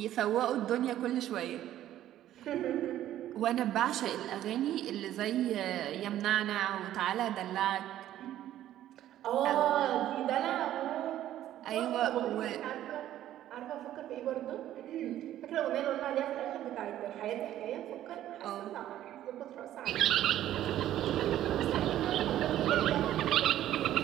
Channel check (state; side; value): quieter; left; 12.6 dB